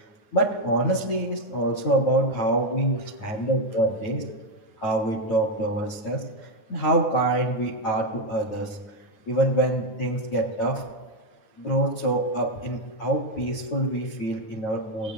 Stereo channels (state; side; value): late; right; 9.5 ms